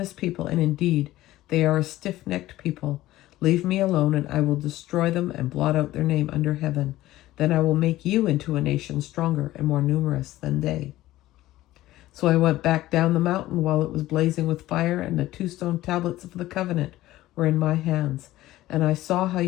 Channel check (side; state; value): right; quieter; 15.9 dB